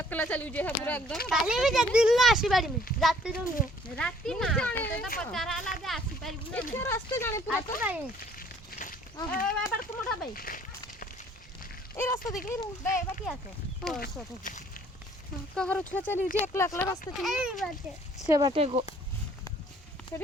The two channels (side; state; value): both; normal; correlation 0.59